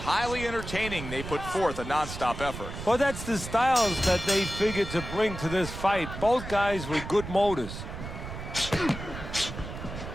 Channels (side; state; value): right; noise; rumble, 9 dB below the sound